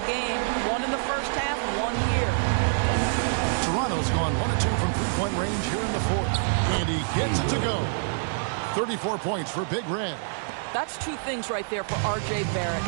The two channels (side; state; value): left; silent; digital silence